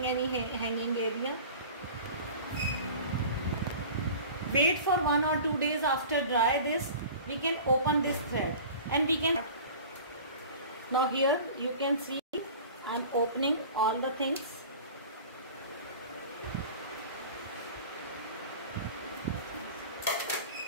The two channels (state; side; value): inverted; both; correlation -0.40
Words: any hanging area, wait for 1 or 2 days after dry this, we can open this thread and we can. Now here you can see I am opening all the things.